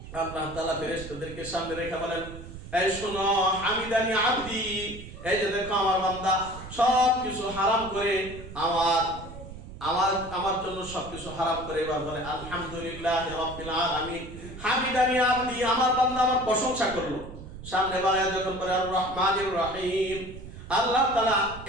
আল্লাহ তাআলা ফেরেশতাদেরকে সামনে রেখে বলেন, এই শোনো, হামিদানি আবদি, এই যে দেখো আমার বান্দা সব কিছু হারাম করে আমার আমার আমার জন্য সবকিছু হারাম করে এবার বলে আলহামদুলিল্লাহ রাব্বিল আলামিন। হামিদানি আবদি, আমার বান্দা আমার প্রশংসা করলো। সামনে বাড়ায় যখন বলে আর রহমানির রহিম, আল্লাহ তাআলা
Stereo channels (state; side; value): noise; right; rumble, 13 dB below the sound